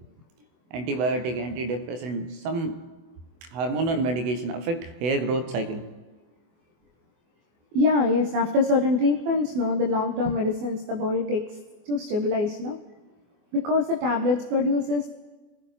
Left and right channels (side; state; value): left; late; 24 ms